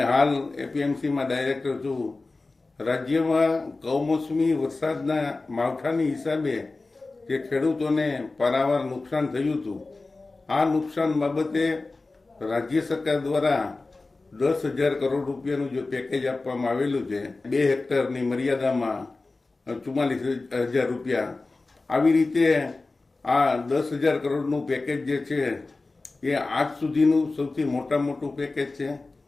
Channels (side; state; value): right; quieter; 3.5 dB